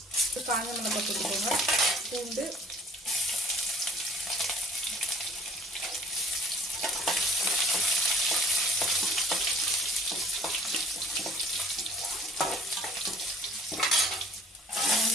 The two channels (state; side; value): normal; both; correlation 0.56